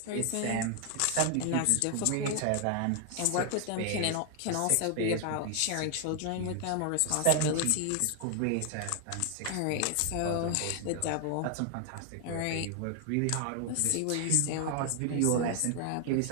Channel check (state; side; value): different; both; correlation 0.00